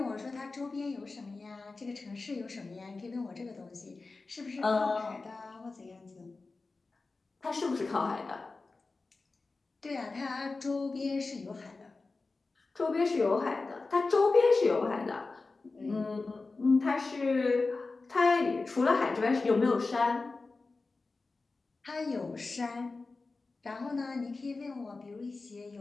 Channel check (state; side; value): quieter; right; 3.7 dB